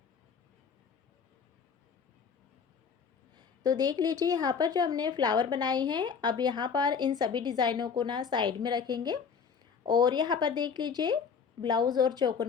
तो देख लीजिए यहाँ पर जो हमने फ्लावर बनाए हैं, अब यहाँ पर इन सभी डिज़ाइनों को ना साइड में रखेंगे और यहाँ पर देख लीजिए ब्लाउज़ और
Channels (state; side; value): quieter; right; 6.2 dB